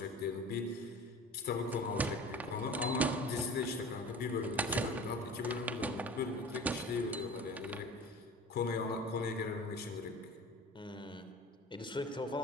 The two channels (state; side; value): normal; both; correlation 0.39